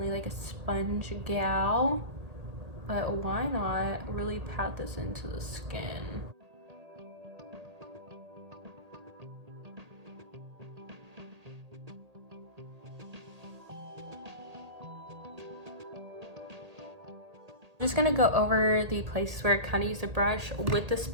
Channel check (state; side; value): late; left; 1.8 ms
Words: like a sponge gal. But why not really pat this into the skin? I'm just gonna go over the places where I kind of use a brush with the